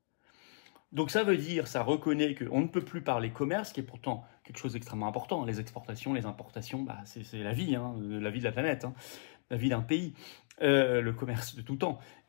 Donc ça veut dire, ça reconnaît qu'on ne peut plus parler commerce, qui est pourtant quelque chose d'extrêmement important. Les exportations, les importations, c'est la vie, la vie de la planète, la vie d'un pays, le commerce de tout temps.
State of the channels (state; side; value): silent; right; digital silence